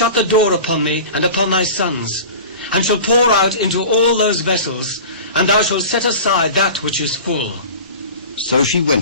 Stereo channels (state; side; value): inverted; both; correlation -0.36